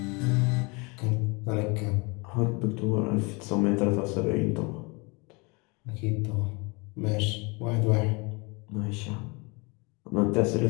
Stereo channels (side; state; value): right; quieter; 28.8 dB